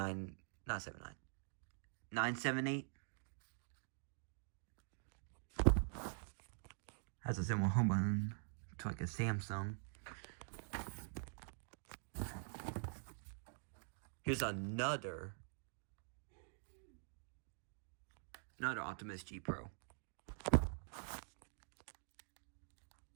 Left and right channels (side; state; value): left; silent; digital silence